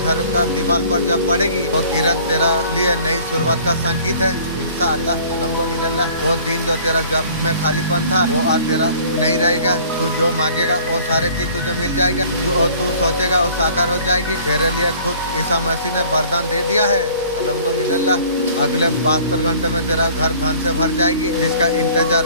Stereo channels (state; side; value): inverted; both; correlation -0.51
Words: का दीवार पर जब पड़ेगी, वो किरण तेरा लिए नई शुरुआत का संकेत है इंशाअल्लाह, अल्हम्दुलिल्लाह। वो दिन जो तेरा जब में खालीपन था वो आज तेरा नहीं रहेगा। तू जो मांगेगा वो सारे चीज तुझे मिल जाएगा। जो तू सोचेगा वो साकार हो जाएगी। तेरे लिए खुद ईसा मसीह ने वरदान दे दिया है अल्हम्दुलिल्लाह। अगले 72 घंटे में तेरा घर धन से भर जाएगी। जिसका इंतजार